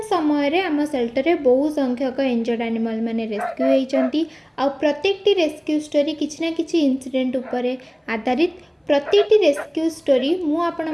समय रे आम सेल्टर बहु संख्यक इंजर्ड एनिमल माने रेस्क्यू होती। आ प्रत्येक रेस्क्यू स्टोरी किसी ना किसी इंसिडेंट उपरे आधारित। प्रत्येक रेस्क्यू स्टोरी मु आपण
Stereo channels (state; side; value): identical; both; correlation 1.00